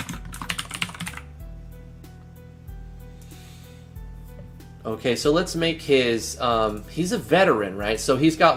Okay, so let's make his, he's a veteran, right? So he's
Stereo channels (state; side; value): identical; both; correlation 1.00